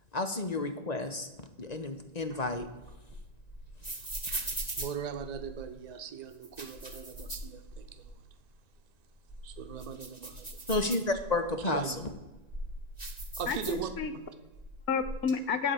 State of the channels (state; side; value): late; right; 1.9 ms